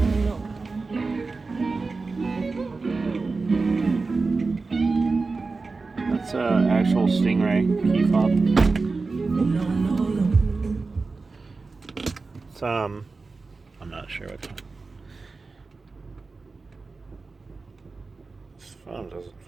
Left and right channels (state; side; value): quieter; left; 4.0 dB